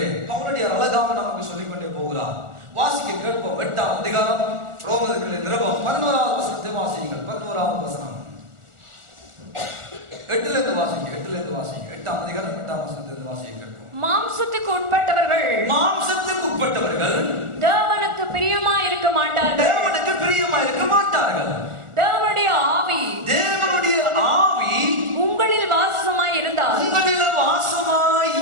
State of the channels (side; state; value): left; late; 1.4 ms